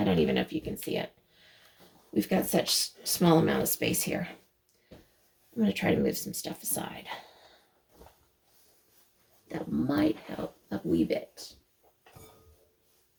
don't even know if you can see it. We've got such small amount of space here. I'm going to try to move some stuff aside. That might help a wee bit.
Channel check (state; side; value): identical; both; correlation 1.00